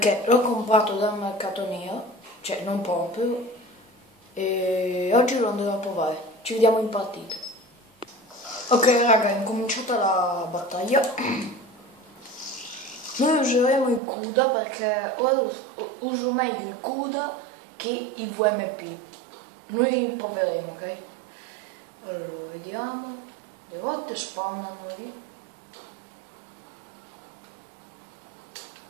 l'ho comprato dal mercato nero, cioè non proprio, e oggi lo andremo a provare. Ci vediamo in partita. Ok raga, è incominciata la battaglia. Noi useremo il CUDA perché ora uso meglio il CUDA che il VMP. Noi proveremo, ok? Allora, vediamo. Le volte spawnano lì.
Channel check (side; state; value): left; drops out; at 14.0 s